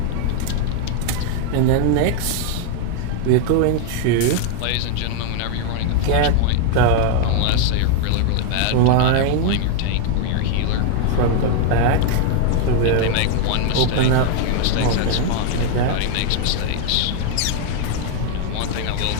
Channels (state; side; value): different; both; correlation 0.00